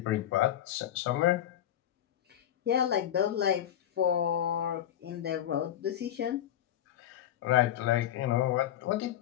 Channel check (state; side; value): quieter; right; 11.4 dB